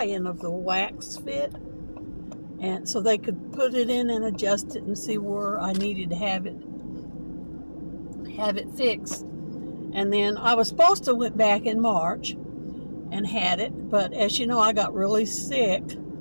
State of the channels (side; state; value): both; inverted; correlation -1.00